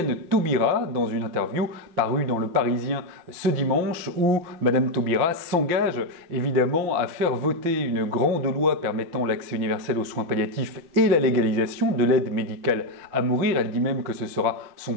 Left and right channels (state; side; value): late; left; 5.8 ms